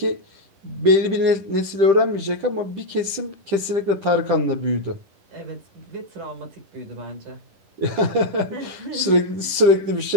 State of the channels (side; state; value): left; late; 10 ms